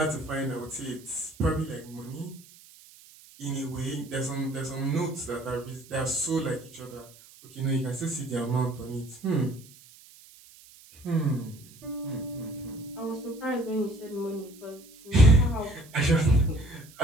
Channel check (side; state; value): right; noise; hiss, 23 dB below the sound